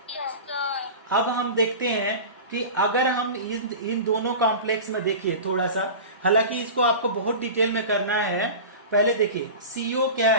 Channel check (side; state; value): both; inverted; correlation -0.32